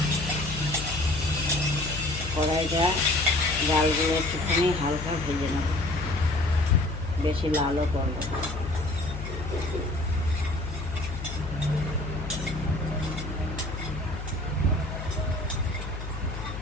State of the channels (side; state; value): left; noise; hum, 8 dB below the sound